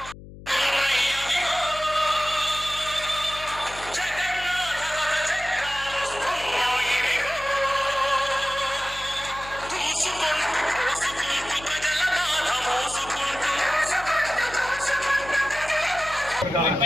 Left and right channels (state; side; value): noise; left; hum, 16 dB below the sound